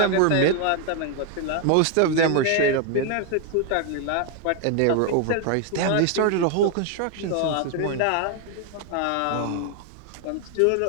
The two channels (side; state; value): both; different; correlation 0.01